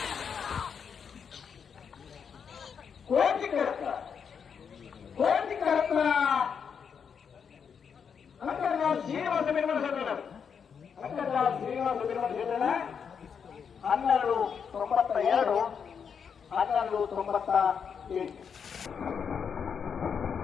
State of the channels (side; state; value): right; quieter; 6.8 dB